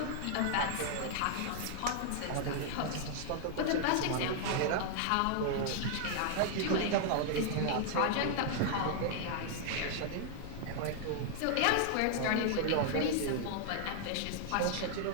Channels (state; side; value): different; both; correlation 0.00